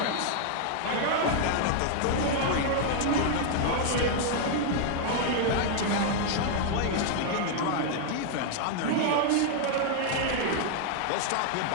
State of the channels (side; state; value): both; different; correlation 0.00